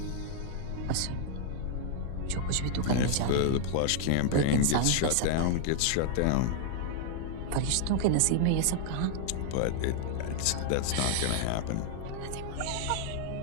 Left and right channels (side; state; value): both; different; correlation 0.00